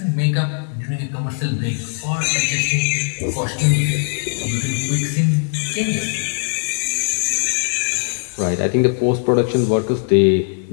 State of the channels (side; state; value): right; silent; digital silence